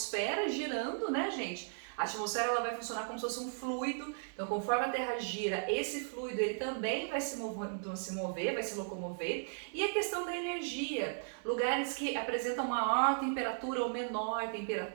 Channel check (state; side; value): silent; left; digital silence